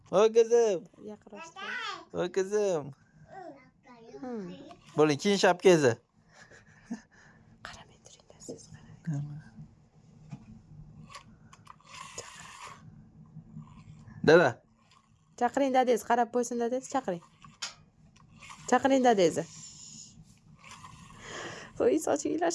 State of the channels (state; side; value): identical; both; correlation 1.00